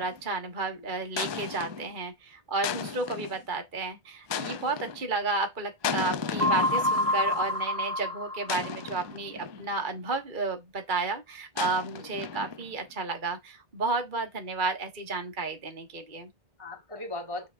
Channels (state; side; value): late; left; 1.2 ms